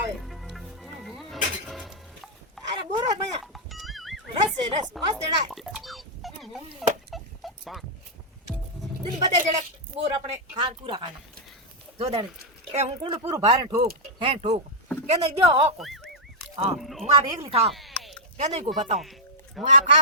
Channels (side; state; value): both; normal; correlation -0.07